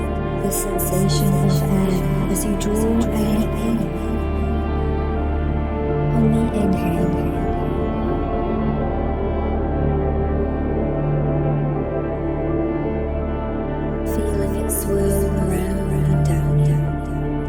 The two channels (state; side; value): identical; both; correlation 1.00